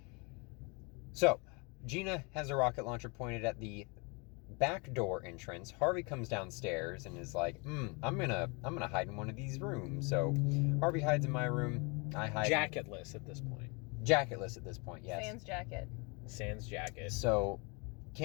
So, Gina has a rocket launcher pointed at the back door entrance. Harvey comes downstairs and is like, I'm gonna hide in one of these rooms. So Harvey hides in my room. I hide Jacketless at this point. Jacketless at this point, yes. Sans jacket. Sans jacket. So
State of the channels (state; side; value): quieter; right; 31.0 dB